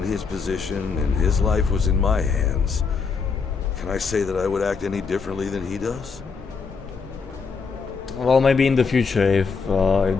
his position and his life was in my hands, can I say that I would act any differently than he does? Well, maybe in the future if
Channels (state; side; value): quieter; right; 5.2 dB